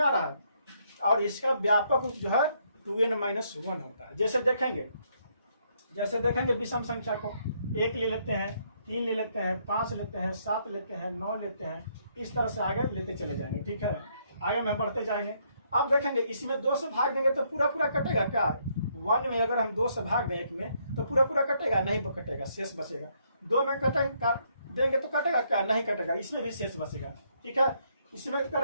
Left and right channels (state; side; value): inverted; both; correlation -0.72